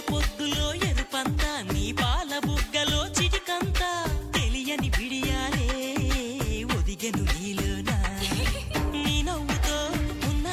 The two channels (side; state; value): both; identical; correlation 1.00